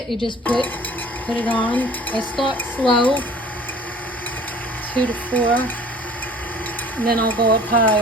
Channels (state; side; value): normal; both; correlation 0.48